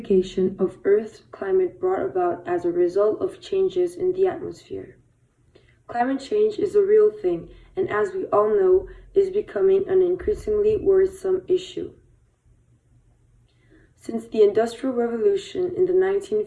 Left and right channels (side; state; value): both; identical; correlation 1.00